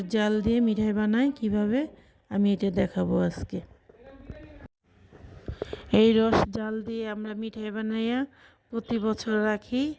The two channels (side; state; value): both; identical; correlation 1.00